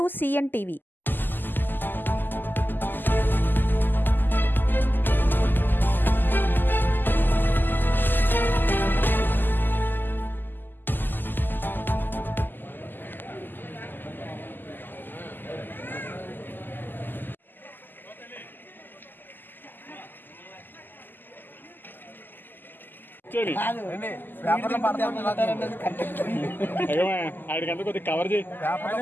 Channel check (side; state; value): right; late; 0.091 ms